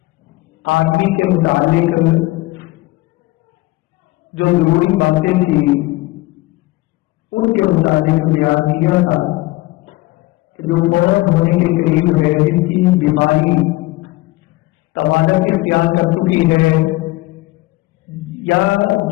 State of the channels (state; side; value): quieter; right; 20.1 dB